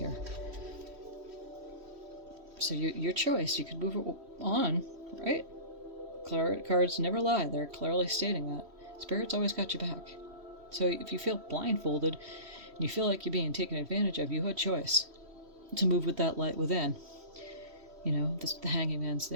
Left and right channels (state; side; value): late; left; 3.1 ms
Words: So your choice. You could move on, right? Cards never lie. They're clearly stating that. Spirit's always got your back. So if you feel blindfolded and you feel like you're being taken advantage of, you had choice to move with that light within. You know, the hanging man's